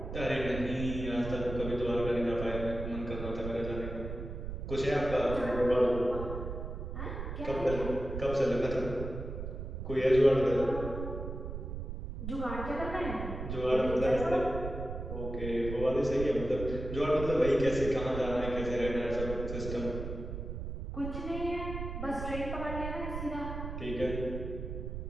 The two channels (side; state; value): right; noise; rumble, 6 dB below the sound